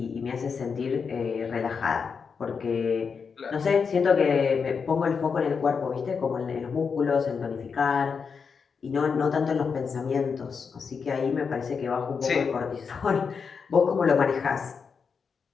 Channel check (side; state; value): right; quieter; 5.8 dB